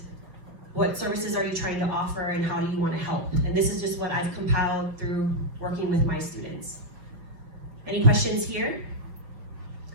what services are you trying to offer and how do you want to help? And this is just what I've compiled through working with my students. Any questions here?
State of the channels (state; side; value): late; left; 6.1 ms